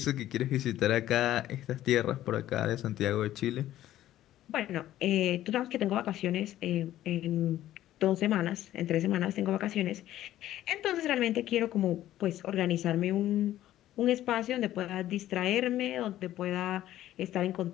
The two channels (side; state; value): right; quieter; 13.4 dB